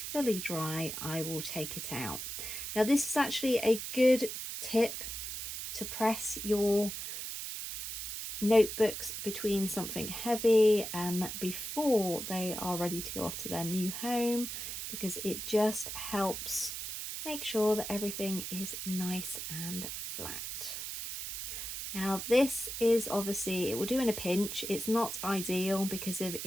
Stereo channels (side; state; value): right; noise; hiss, 6 dB below the sound